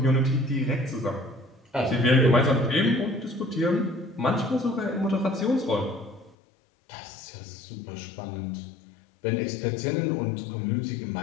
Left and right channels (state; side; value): drops out; right; at 6.4 s